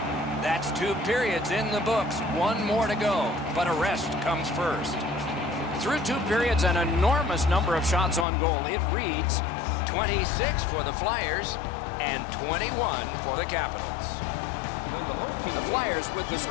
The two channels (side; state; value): right; drops out; at 8.2 s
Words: That's 2 periods in the books. 1 more to go, but a rest comes first. Through 2 periods, an enormous number of shots on goal. It reads 26 for the Flyers and 21 for the Capitals. The Flyers, with the